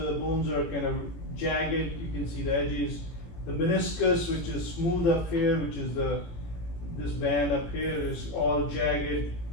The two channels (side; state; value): right; late; 18 ms